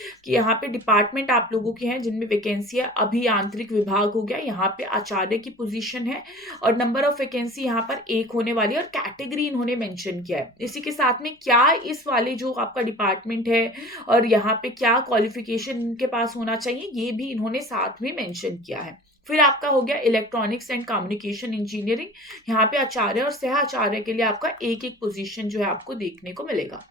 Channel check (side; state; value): both; normal; correlation 0.41